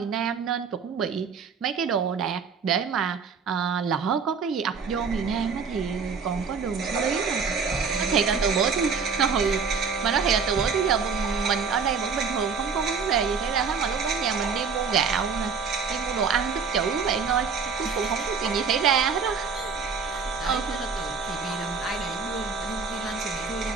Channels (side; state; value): left; quieter; 5.6 dB